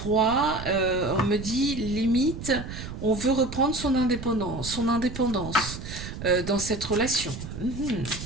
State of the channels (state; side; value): noise; right; rumble, 9 dB below the sound